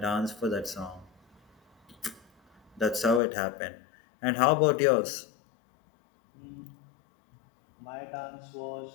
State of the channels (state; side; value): drops out; right; at 3.2 s